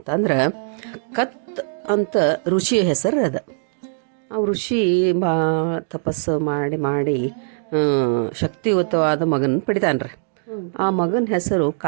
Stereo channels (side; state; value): left; silent; digital silence